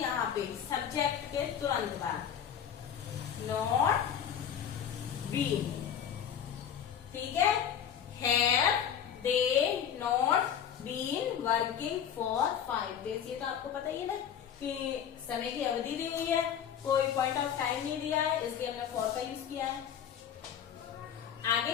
पे सब्जेक्ट के तुरंत बाद, नॉट बीन। ठीक है, have they not been working for 5 days। ये तो आपको पता ही है ना कि समय की अवधि दी हुई है, कोई पॉइंट ऑफ टाइम नहीं दिया है, इसलिए हमने फॉर का यूज किया है। आगे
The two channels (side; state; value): right; quieter; 8.8 dB